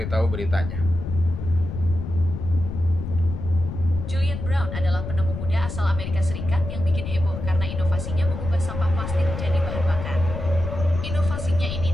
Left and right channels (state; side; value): noise; left; rumble, 6 dB below the sound